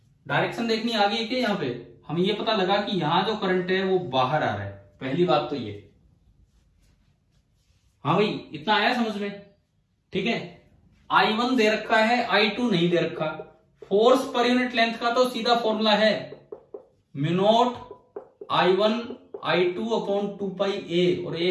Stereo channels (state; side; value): identical; both; correlation 1.00